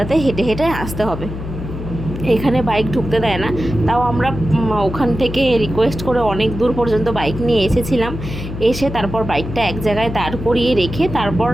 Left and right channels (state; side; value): noise; left; hum, 8 dB below the sound